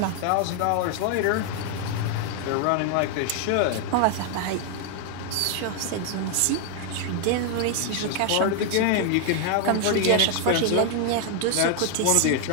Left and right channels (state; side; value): different; both; correlation 0.00